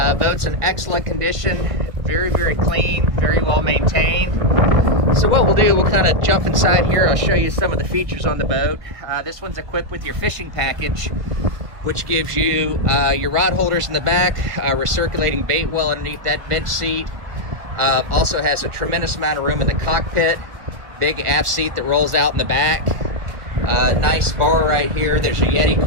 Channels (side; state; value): left; late; 1.8 ms